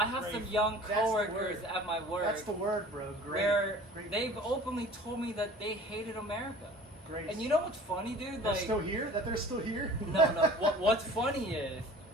have some Grateful. young That's the coworkers word. at my work That's the word, bro. Great. where Great. they've openly told me that they hated America. Great. And you know what's funny, dude? they're Like still here? That they're still here? no. What's funny is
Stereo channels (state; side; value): normal; both; correlation 0.45